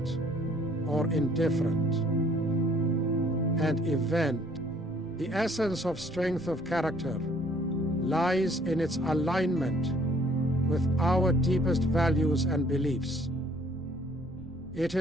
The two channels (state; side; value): noise; left; rumble, 19 dB below the sound